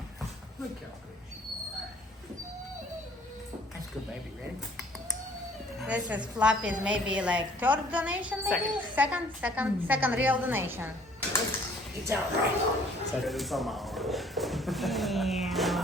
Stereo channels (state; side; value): normal; both; correlation 0.57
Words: Look how good you are. That's good, baby. Ready? This is Fluffy's maybe like third donation, maybe? Second real donation. It's all right. Second is on my arm. Yeah.